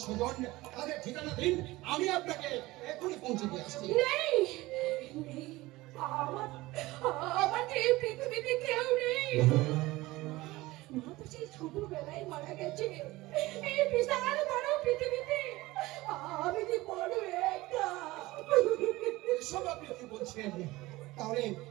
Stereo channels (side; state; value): left; quieter; 19.5 dB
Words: স্বজন, তাদের ঠিকানা দিন, আমি আপনাকে এখনই পৌঁছে দিয়ে আসছি। নেই আমার এই পৃথিবীতে কেউ নেই। মা তো সেই ছোটবেলায় মারা গেছে। এই বিশাল বড় পৃথিবীতে আমি কি বড় একা। এসব আপনি কি বলছেন?